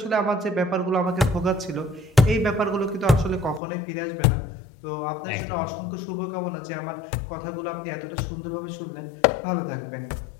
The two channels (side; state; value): right; drops out; at 3.6 s